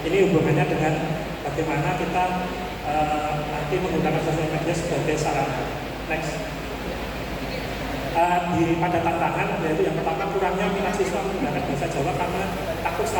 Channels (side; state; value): both; identical; correlation 1.00